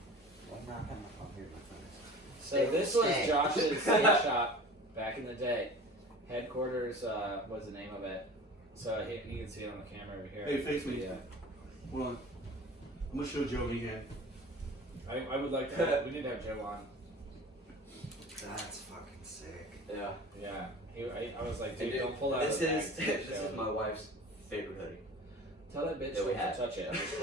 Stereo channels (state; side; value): normal; both; correlation 0.40